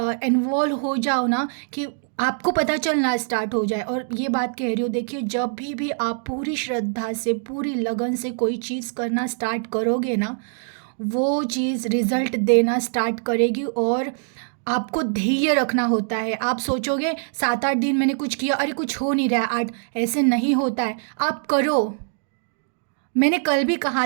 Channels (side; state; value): left; silent; digital silence